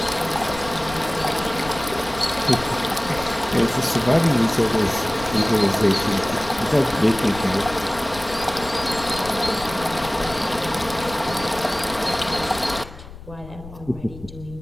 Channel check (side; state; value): left; noise; rumble, 16 dB below the sound